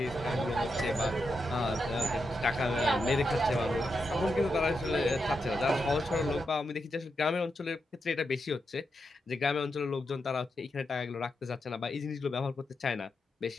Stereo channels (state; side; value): normal; both; correlation 0.85